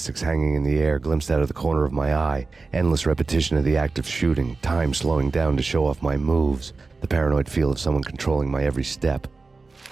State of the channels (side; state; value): left; quieter; 3.9 dB